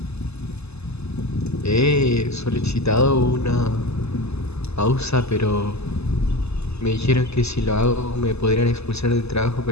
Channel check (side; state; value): right; late; 0.79 ms